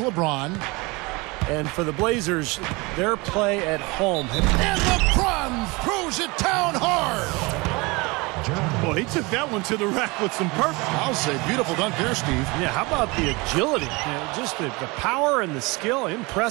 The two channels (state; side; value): quieter; left; 25.3 dB